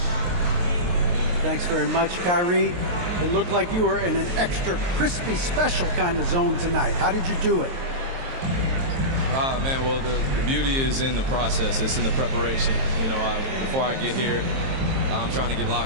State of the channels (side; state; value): left; late; 23 ms